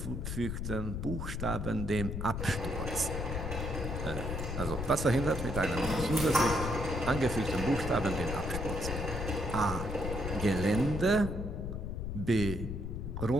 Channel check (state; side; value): noise; left; rumble, 4 dB below the sound